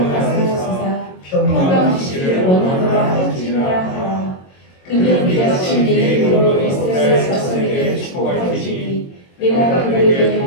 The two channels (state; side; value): late; right; 22 ms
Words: 가사하시사 평강 주시기를 원하노라 할지니라 하라. 그들은 이같이 내 이름으로 이스라엘 자손에게 축복할지니 내가 그들에게